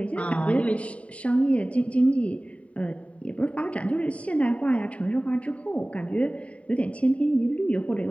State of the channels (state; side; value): late; right; 0.065 ms